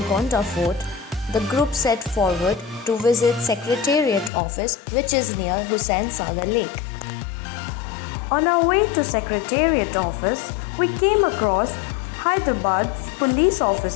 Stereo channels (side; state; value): right; drops out; at 4.3 s